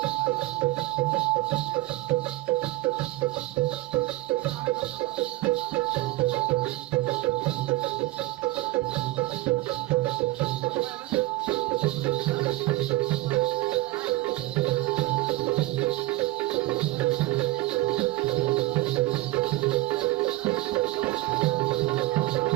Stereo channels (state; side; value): quieter; left; 18.5 dB